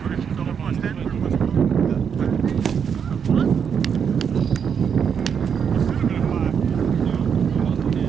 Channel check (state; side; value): quieter; left; 7.2 dB